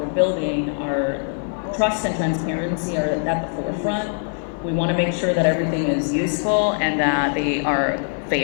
building, are trust and transparency are at the forefront. We want to make sure that everything is useful and that they are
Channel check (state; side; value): silent; right; digital silence